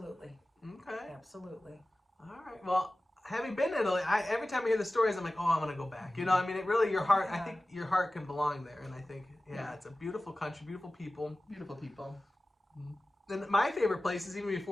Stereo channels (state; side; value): normal; both; correlation 0.96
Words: Okay. Absolutely. All right. Well, having been to Italy, every time I hear the stories, I'm like, oh, I want to go back. I mean, it really, your heart, I think your heart can belong there. And I think, it's a beautiful country, beautiful people. Beautiful people. And my favorite places, even